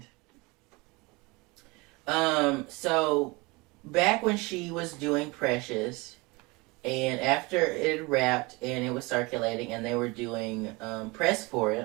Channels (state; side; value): quieter; left; 25.4 dB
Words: So, back when she was doing Precious, and after it wrapped and it was circulating and they were doing press for